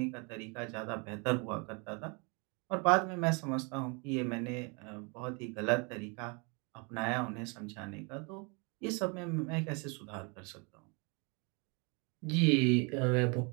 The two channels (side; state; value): left; quieter; 32.1 dB